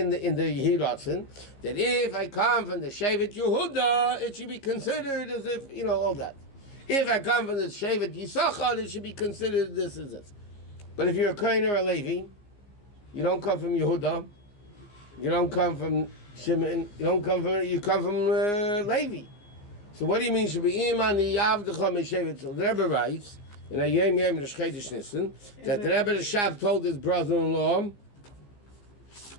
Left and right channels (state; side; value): late; right; 15 ms